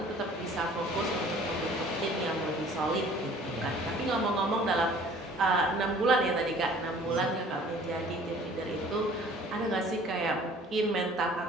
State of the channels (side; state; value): both; normal; correlation 0.51